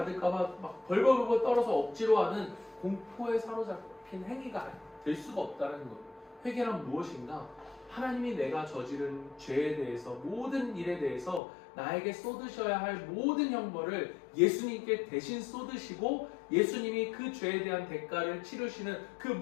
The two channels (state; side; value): drops out; right; at 11.4 s